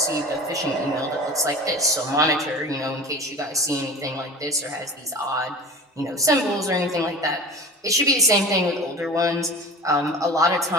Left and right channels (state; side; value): normal; both; correlation 0.37